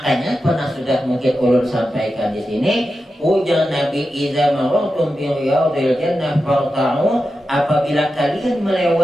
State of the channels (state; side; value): normal; both; correlation 0.90